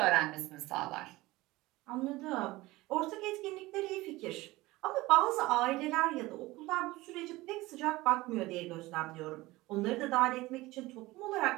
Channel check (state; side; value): quieter; left; 19.6 dB